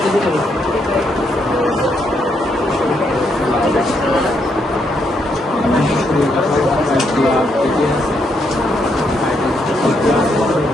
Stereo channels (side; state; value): both; normal; correlation 0.77